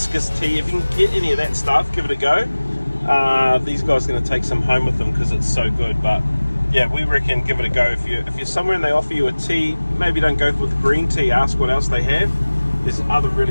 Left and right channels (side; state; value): both; inverted; correlation -1.00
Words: tea. If you can get any of that stuff, give it a go. These guys are going to take some home with them because it's so good, but yeah, we reckon give it a go. If you're somewhere and they offer you a tea, maybe don't go with green tea, ask what else they have. There's other